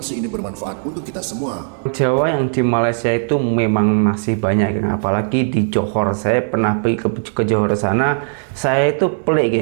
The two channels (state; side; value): silent; left; digital silence